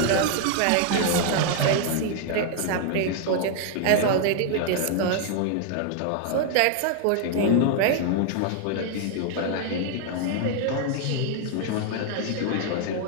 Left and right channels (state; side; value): different; both; correlation 0.00